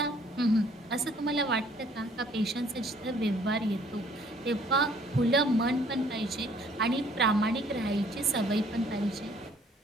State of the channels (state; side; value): normal; both; correlation 0.60